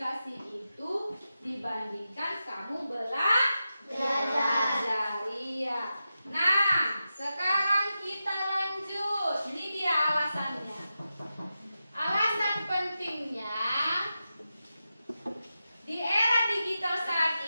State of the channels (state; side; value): inverted; both; correlation -0.91